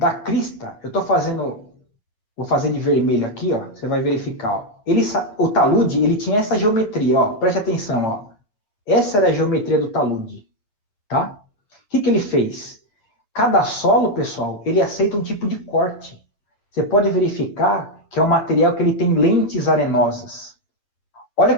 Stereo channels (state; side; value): late; right; 9.1 ms